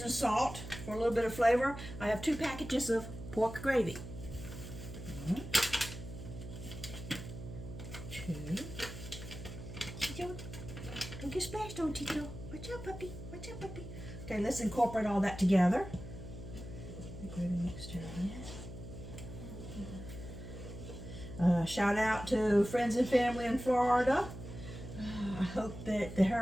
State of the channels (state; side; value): noise; right; hum, 11 dB below the sound